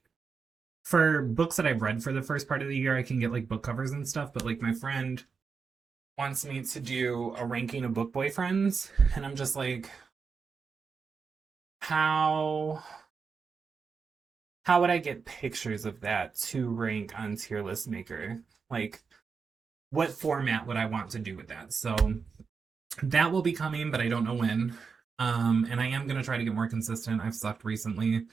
for books that I've read for the first part of the year. I can get like book covers and stuff, but like my friend wants me to do a ranking of book boyfriends, and I'm just like, how would I get pictures of that to rank on Tier List Maker? Like, what format would I want to do with that? So that will be coming, but I don't know when. And I am gonna try to get more consistent. I've sucked recently,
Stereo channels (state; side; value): quieter; left; 5.4 dB